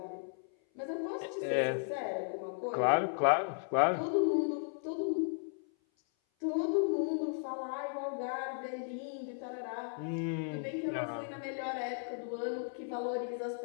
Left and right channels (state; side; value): silent; right; 54 dB below the other